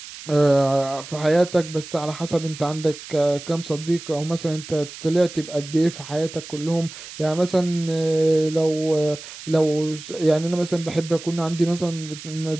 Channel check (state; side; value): noise; right; hiss, 14 dB below the sound